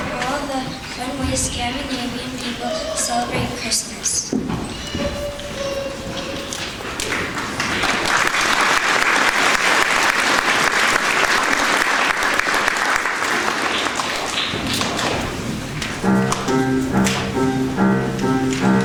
all the fun ways Scandinavian people celebrate Christmas.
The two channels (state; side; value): identical; both; correlation 1.00